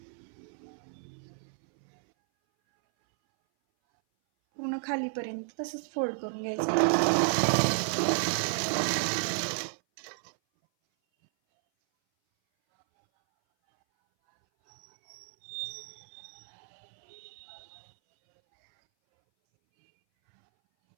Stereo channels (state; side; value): silent; left; 57 dB below the other